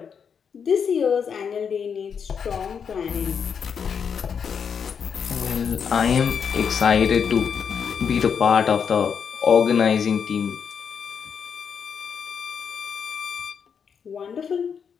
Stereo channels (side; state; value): right; quieter; 6.9 dB